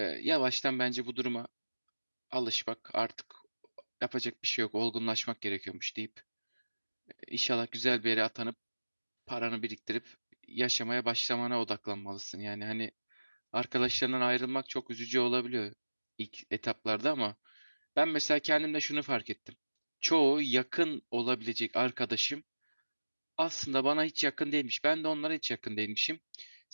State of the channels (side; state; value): both; inverted; correlation -1.00